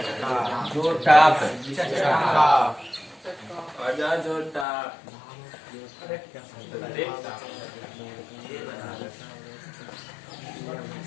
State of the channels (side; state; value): right; drops out; at 4.7 s